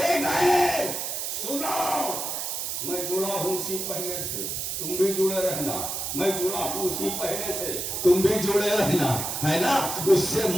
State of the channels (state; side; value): noise; right; hiss, 3 dB below the sound